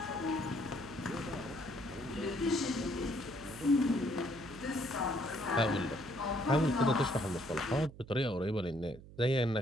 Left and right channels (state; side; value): noise; right; hum, 18 dB below the sound